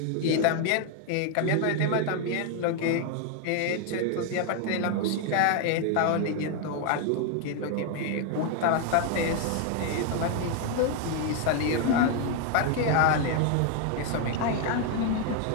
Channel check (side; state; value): both; different; correlation 0.00